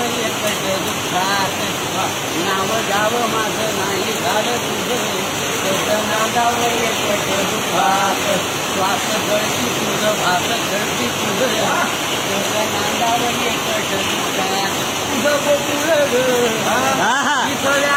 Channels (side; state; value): both; identical; correlation 1.00